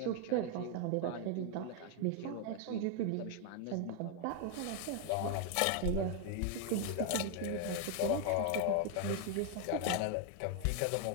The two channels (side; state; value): both; different; correlation 0.00